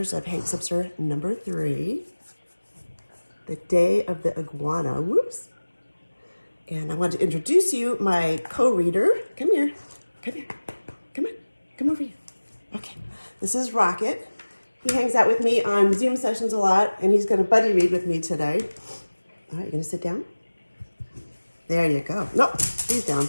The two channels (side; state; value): both; inverted; correlation -1.00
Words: of Hank Zipzer number 3, The Day of the Iguana. Whoops. And I want to introduce you my co-reader. Come here. Come here. Come on. Come over here. Okay. This is Rocket. He hangs out with me on Zoom sessions a lot, and he's going to buddy read with me today. All right, you going to sit down? There you go. Nope, he's down.